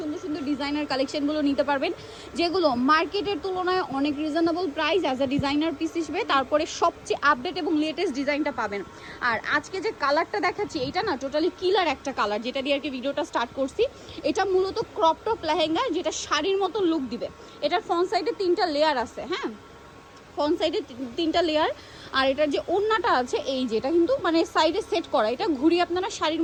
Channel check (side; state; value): both; identical; correlation 1.00